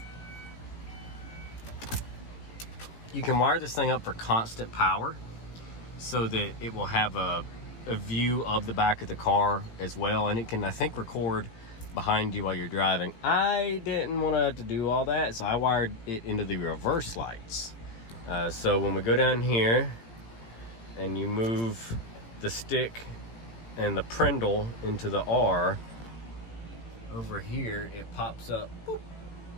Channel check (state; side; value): late; right; 17 ms